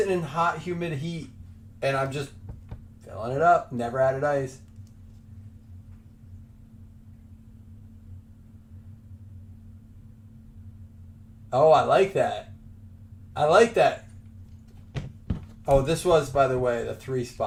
in hot, humid heat, and I'm just filling it up. Never added ice. Oh, I like that. I like that. Oh, this was, by the way, the 3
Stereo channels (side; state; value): both; identical; correlation 1.00